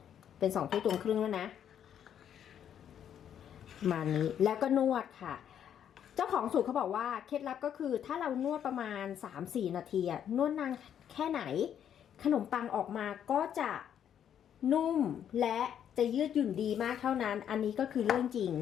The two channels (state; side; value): quieter; right; 9.3 dB